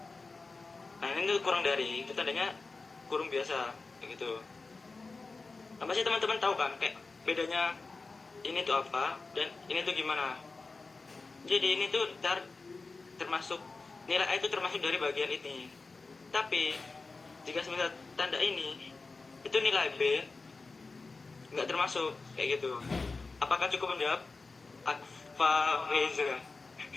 Nah, ini tuh kurang dari, itu tandanya kurung biasa begitu. Nah, pasti teman-teman tahu kan kayak bedanya ini tuh apa dan ini tuh gimana. Jadi ini tuh termasuk nilai A itu termasuk dari bagian ini. Tapi jika semisal tanda ini itu nilai B nggak termasuk kayak gitu. Apakah cukup menjawab? Akfa Reza.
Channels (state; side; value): quieter; right; 3.9 dB